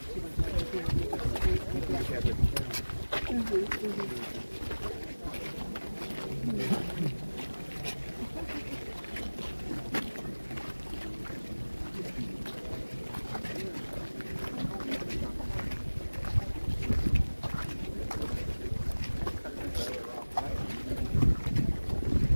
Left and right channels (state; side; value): inverted; both; correlation -1.00